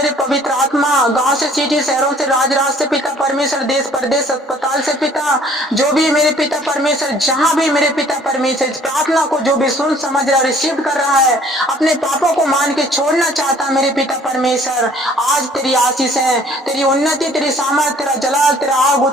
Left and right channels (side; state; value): both; normal; correlation 0.56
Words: पवित्र आत्मा, गांव से, सिटी शहरों से, राज से पिता परमेश्वर, देश प्रदेश अस्पताल से पिता, जो भी मेरे पिता परमेश्वर, जहाँ भी मेरे पिता परमेश्वर इस प्रार्थना को जो भी सुन समझ रहा, रिसीव कर रहा है, अपने पापों को मान के छोड़ना चाहता है मेरे पिता परमेश्वर, आज तेरी आशीष है, तेरी उन्नति, तेरी सामर्थ, तेरा जलाल, तेरा आग